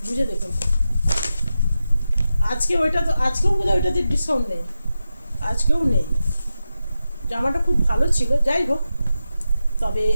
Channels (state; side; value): inverted; both; correlation -0.91